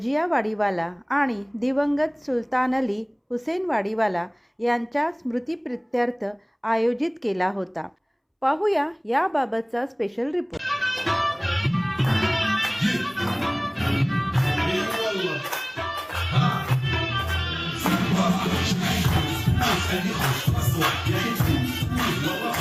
वाडीवाला आणि दिवंगत सुलतान अली हुसेन वाडीवाला यांच्या स्मृतिप्रित्यर्थ आयोजित केला होता. पाहूया याबाबतचा special report.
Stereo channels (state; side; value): identical; both; correlation 1.00